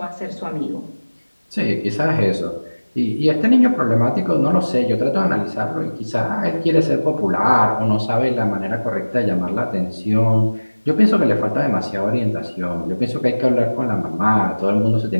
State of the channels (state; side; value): inverted; both; correlation -1.00